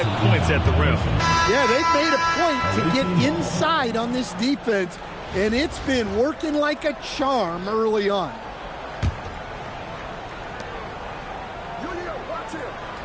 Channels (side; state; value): both; identical; correlation 1.00